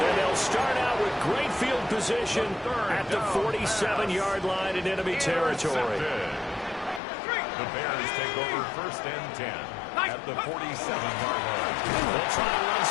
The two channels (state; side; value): drops out; right; at 7.0 s